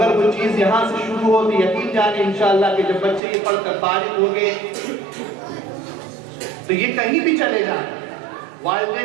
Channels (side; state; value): left; drops out; at 3.2 s